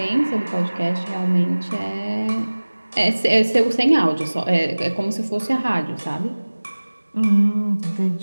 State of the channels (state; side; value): inverted; both; correlation -1.00